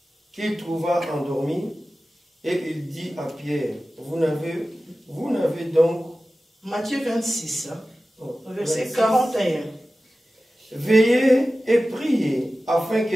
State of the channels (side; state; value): both; normal; correlation 0.95